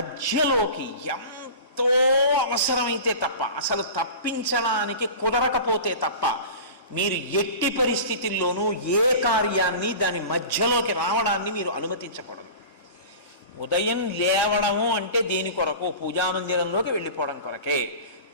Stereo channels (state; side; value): inverted; both; correlation -0.35